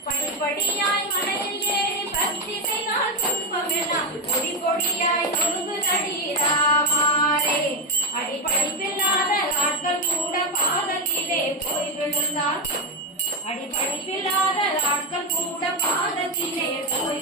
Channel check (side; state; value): both; normal; correlation 0.09